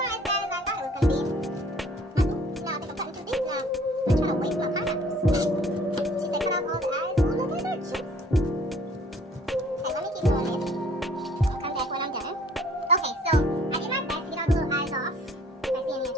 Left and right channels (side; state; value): both; normal; correlation 0.56